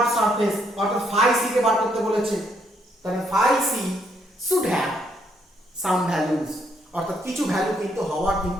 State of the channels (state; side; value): normal; both; correlation 0.72